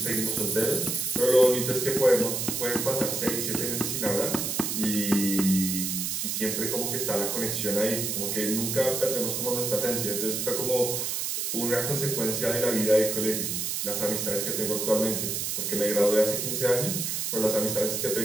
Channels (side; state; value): right; noise; hiss, 1 dB below the sound